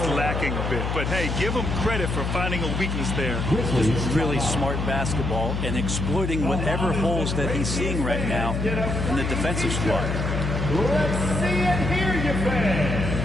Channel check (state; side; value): noise; left; hum, 2 dB below the sound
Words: lacking a bit, but hey, give him credit for finding a weakness there. Really smart basketball and exploiting whatever holes that he's seeing right now in the defensive squad. Let's see and hear you, fans.